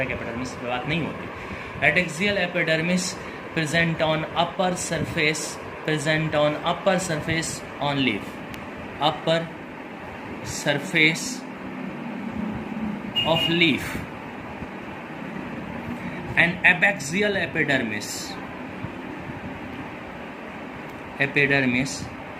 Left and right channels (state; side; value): identical; both; correlation 1.00